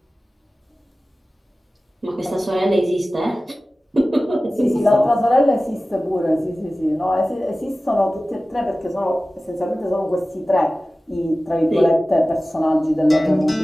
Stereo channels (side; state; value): both; normal; correlation 0.96